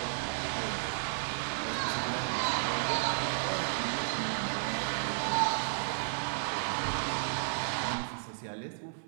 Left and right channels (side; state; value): left; silent; 56 dB below the other